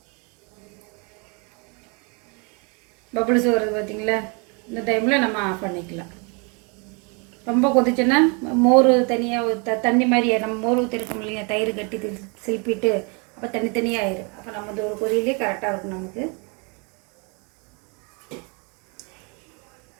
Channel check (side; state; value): left; quieter; 33.4 dB